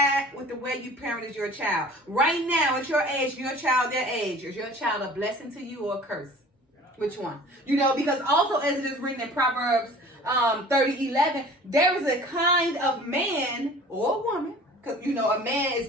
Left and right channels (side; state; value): both; normal; correlation 0.45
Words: with the way you parented your child? Right now, at your age, your child their age, is your child a blessing to you or a curse? Which one? Because also as it is written in Proverbs 30:11, there is a kind of man or woman, because a man is